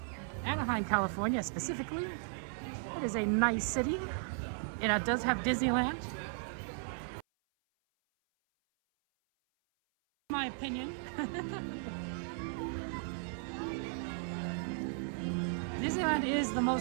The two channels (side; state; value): left; silent; 54 dB below the other